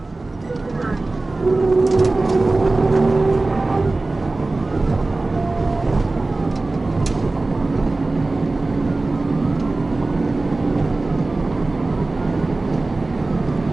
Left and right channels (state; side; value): quieter; left; 3.2 dB